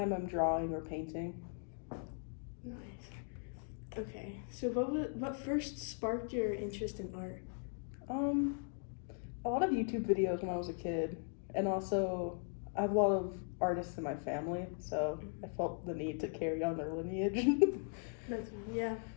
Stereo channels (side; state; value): right; silent; 52 dB below the other